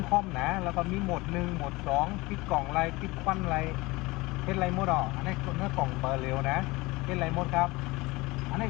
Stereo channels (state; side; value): quieter; right; 22.2 dB